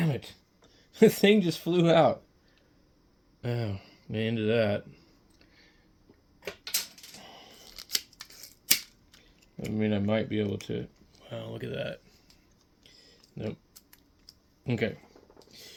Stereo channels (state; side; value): identical; both; correlation 1.00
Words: it. The thing just flew out. Oh, into that. I mean, I might be able to. Wow, look at that. Nope. Okay.